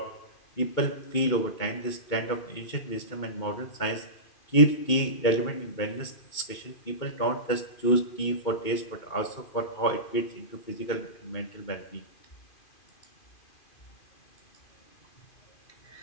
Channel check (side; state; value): right; late; 2.2 ms